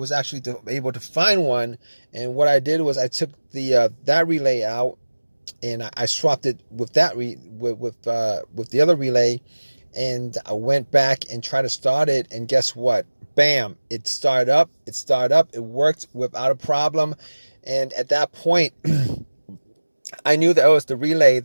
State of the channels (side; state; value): both; inverted; correlation -1.00